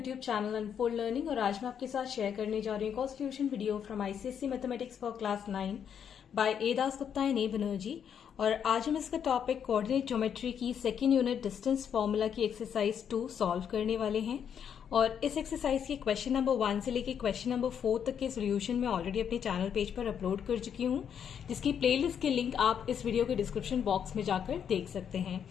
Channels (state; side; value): quieter; right; 8.2 dB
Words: channel unfold learning. और आज मैं आपके साथ शेयर करने जा रही हूँ constitution video from ICSE mathematics for class 9 by A Das Gupta and A Banerjee. और आज हम इसका टॉपिक कोऑर्डिनेट ज्योमेट्री की सेकेंड यूनिट डिस्टेंस फॉर्मूला की एक्सरसाइज 2 सॉल्व करने वाले हैं। और इस एक्सरसाइज के क्वेश्चन नंबर 1 से लेकर क्वेश्चन नंबर 4 तक के सोल्यूशन मैं ऑलरेडी अपने चैनल पेज पर अपलोड कर चुकी हूँ, जिसकी प्लेलिस्ट के लिंक आप इस वीडियो के डिस्क्रिप्शन बॉक्स में जाकर देख सकते हैं।